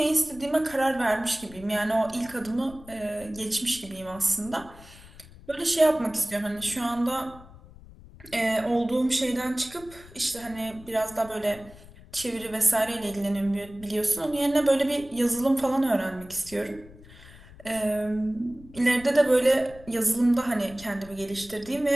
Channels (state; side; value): noise; left; rumble, 20 dB below the sound